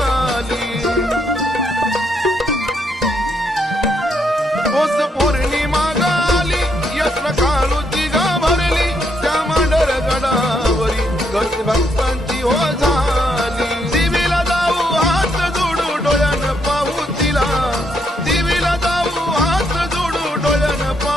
पौर्णिमा गाली यात्रा काळूची ग भरली, त्या मांढर गडावरी गर्दी भक्तांची हो झाली. देवीला जाऊ हात जोडू डोळ्यानं पाहू तिला, देवीला जाऊ हात जोडू डोळ्यानं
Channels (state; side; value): normal; both; correlation 0.76